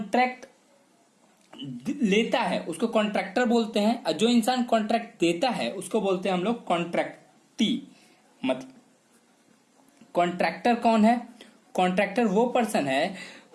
लेता है उसको कॉन्ट्रैक्टर बोलते हैं, और जो इंसान कॉन्ट्रैक्ट देता है उसको बोलते हैं हम लोग कॉन्ट्रैक्टी। मतलब कॉन्ट्रैक्टर कौन है? कॉन्ट्रैक्टर वो पर्सन है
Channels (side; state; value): both; identical; correlation 1.00